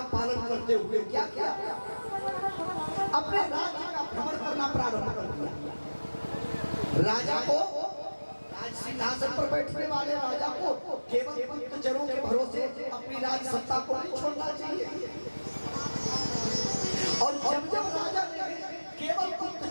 पालन करते हुए क्या किया, अपने राज्य का भ्रमण करना प्रारंभ कर दिया। राजा को, राज सिंहासन पर बैठने वाले राजा को केवल गुप्तचरों के भरोसे अपनी राज सत्ता को नहीं छोड़ना चाहिए। और जब जब राजा ने केवल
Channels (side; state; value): both; inverted; correlation -1.00